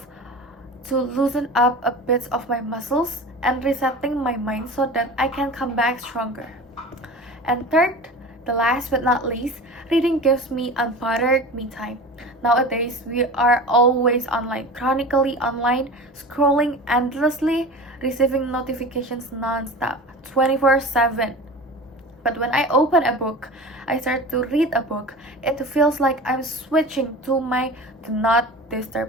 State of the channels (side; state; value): both; normal; correlation 0.34